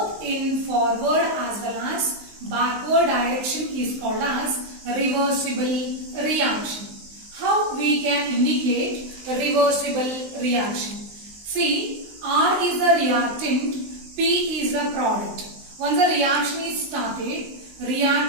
in forward as well as backward direction is called as reversible reaction. How we can indicate reversible reaction? See, R is a reactant, P is a product. Once the reaction is started,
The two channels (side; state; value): left; late; 19 ms